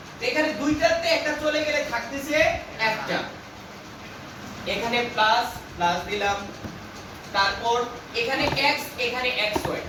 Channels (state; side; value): identical; both; correlation 1.00